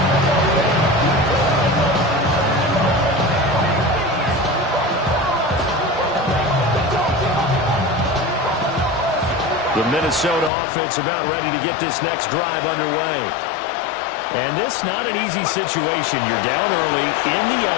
The Minnesota offense about ready to get this next drive underway. And this not an easy situation. You're down early, in the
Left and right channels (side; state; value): right; drops out; at 10.5 s